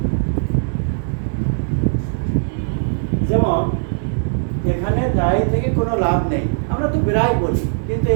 যেমন এখানে দায়ী থেকে কোনো লাভ নেই, আমরা তো প্রায় বলি, কিন্তু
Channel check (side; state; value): left; silent; digital silence